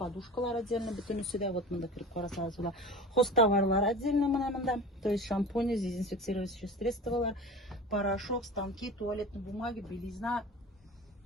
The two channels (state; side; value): normal; both; correlation 0.36